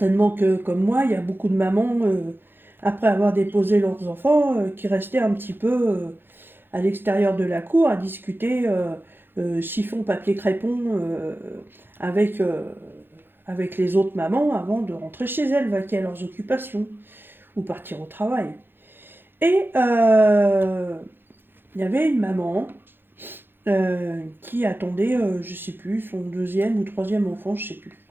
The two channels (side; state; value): left; late; 0.10 ms